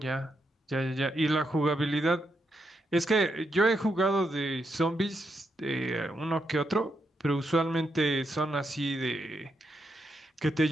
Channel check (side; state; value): both; normal; correlation 0.82